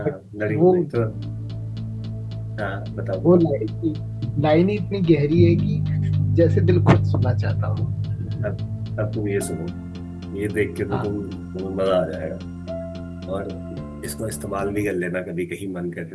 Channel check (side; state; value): both; identical; correlation 1.00